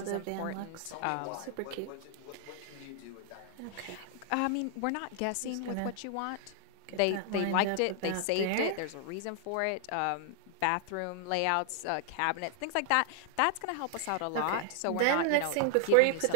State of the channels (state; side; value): different; both; correlation 0.00